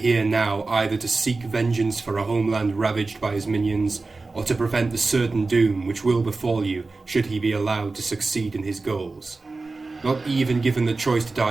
now either to seek vengeance for a homeland ravaged by his minions, or to prevent the certain doom which will befall you should he be allowed to succeed in his goals. Not even given the choice to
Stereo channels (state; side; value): quieter; left; 3.7 dB